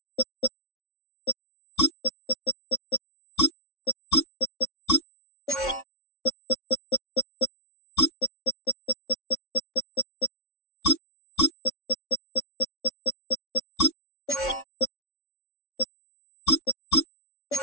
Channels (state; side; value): late; right; 3.6 ms